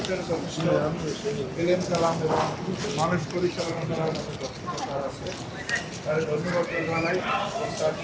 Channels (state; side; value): identical; both; correlation 1.00